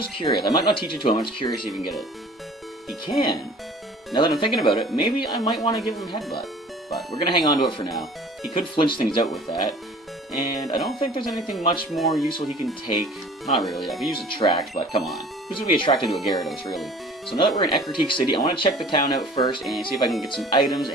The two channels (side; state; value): both; normal; correlation 0.47